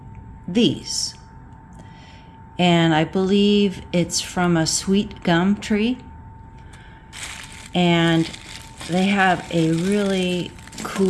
these, and I believe it's from a sweet gum tree, and they have a really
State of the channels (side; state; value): both; identical; correlation 1.00